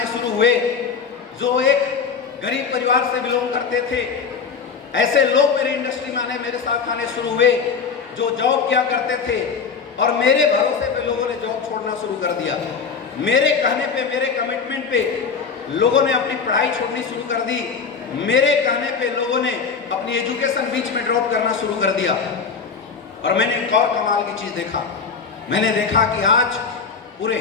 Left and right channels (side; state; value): right; quieter; 5.7 dB